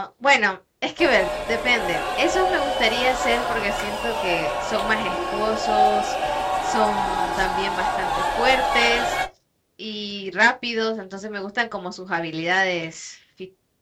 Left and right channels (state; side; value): identical; both; correlation 1.00